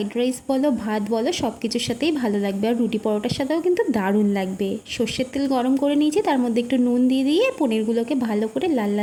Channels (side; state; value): both; identical; correlation 1.00